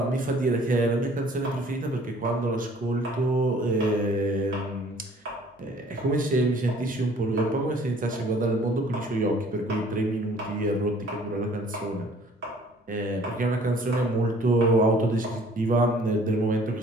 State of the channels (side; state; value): both; normal; correlation 0.55